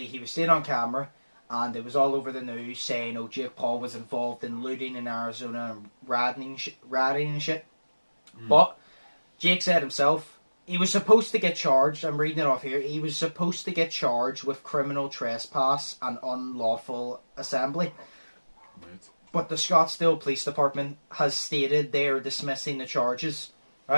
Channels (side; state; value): both; inverted; correlation -1.00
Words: he was seen on camera. And it was all over the news saying, oh, Jake Paul was involved in looting in Arizona and ratting and shit. But Jake said himself, he was supposed to get charged. I'm reading it off here. He was supposed to get charged with criminal trespass and unlawful assembly. Right. But the Scottsdale Police Department has stated they are dismissing the charges,